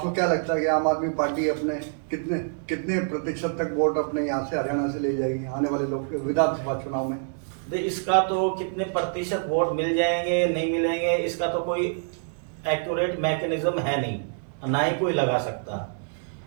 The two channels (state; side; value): silent; left; digital silence